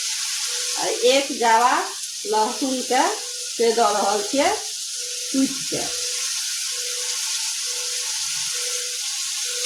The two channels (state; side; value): identical; both; correlation 1.00